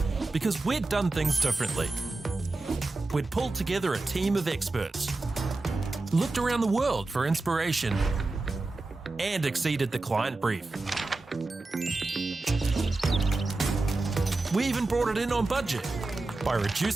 Because we'd done things differently. We'd pulled together a team of experts, looked around the world for inspiration, and exceeded the client brief. We even brought it in on budget by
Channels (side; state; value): left; quieter; 3.2 dB